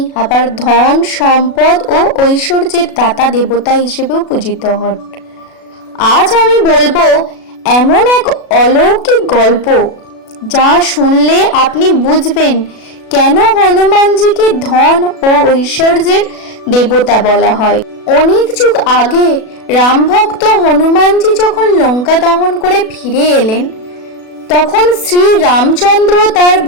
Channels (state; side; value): late; right; 37 ms